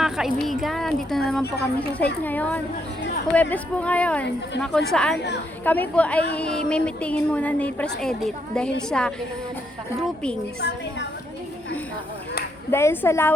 kaibigan. Dito na naman po kami sa site ngayon. Huwebes po ngayon na kung saan kami po ay may meetingin muna ni Press Edit dahil sa groupings. Dahil sa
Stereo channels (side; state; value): both; normal; correlation 0.76